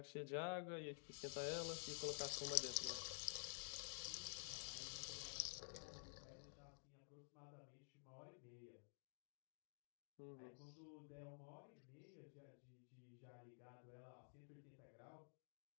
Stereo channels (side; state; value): right; silent; digital silence